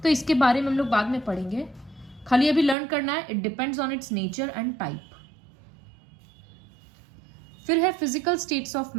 तो इसके बारे में हम लोग बाद में पढ़ेंगे, खाली अभी लर्न करना है, it depends on it's nature and type. फिर है physical states of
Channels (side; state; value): left; drops out; at 2.8 s